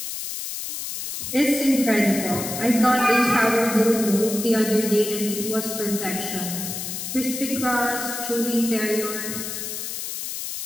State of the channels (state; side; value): noise; left; hiss, 6 dB below the sound